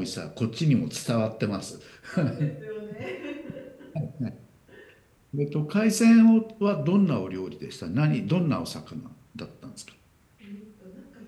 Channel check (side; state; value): both; identical; correlation 1.00